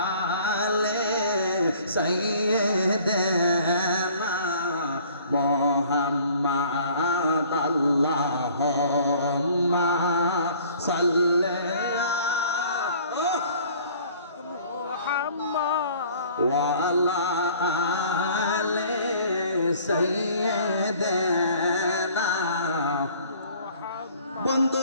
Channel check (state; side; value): inverted; both; correlation -0.53